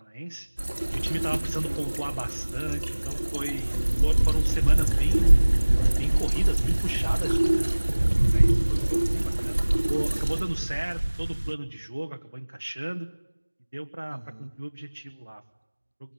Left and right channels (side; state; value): both; inverted; correlation -1.00